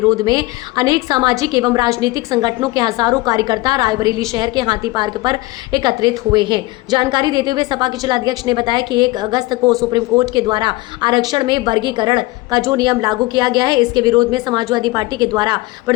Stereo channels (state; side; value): quieter; right; 20.5 dB